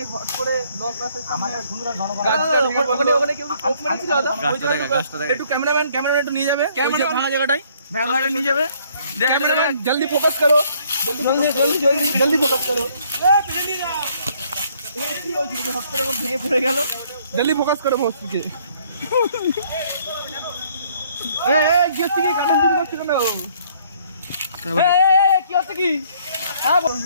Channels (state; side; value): inverted; both; correlation -0.63